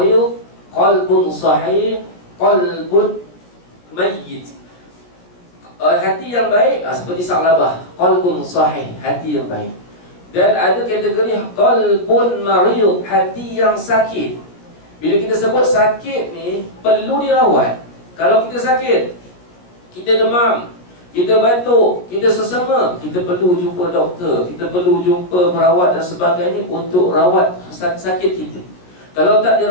qalbun sahih, qalbun mayyit. Hati yang baik seperti Sa'labah, qalbun sahih, hati yang baik. Dan ada kategori qalbun marid, hati yang sakit. Bila kita sebut sakit ni, perlu dirawat. Kalau kita sakit, kita demam, kita batuk, kita sesama, kita perlu jumpa doktor, kita perlu jumpa perawat dan sebagainya untuk rawat sakit kita. Kalau tak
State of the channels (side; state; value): right; late; 17 ms